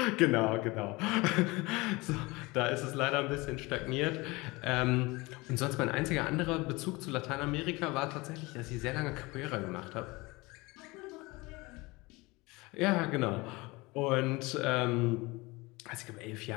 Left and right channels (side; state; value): right; quieter; 23.3 dB